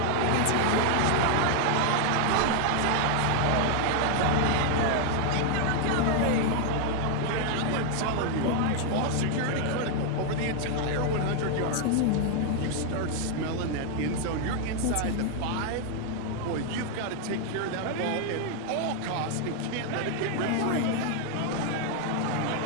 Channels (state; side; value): different; both; correlation 0.00